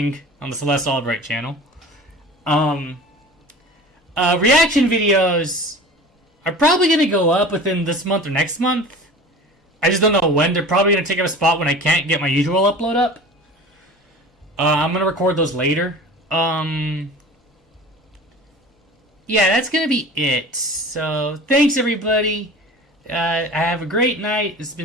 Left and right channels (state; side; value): normal; both; correlation 0.39